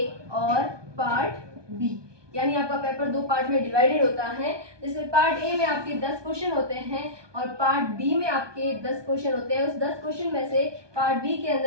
और पार्ट बी। यानी आपका पेपर दो पार्ट में डिवाइडेड होता है, जिसमें पार्ट ए में आपके 10 क्वेश्चन होते हैं और पार्ट बी में आपके 10 क्वेश्चन होते हैं। उस 10 क्वेश्चन में से पार्ट बी के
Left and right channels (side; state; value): left; late; 1.2 ms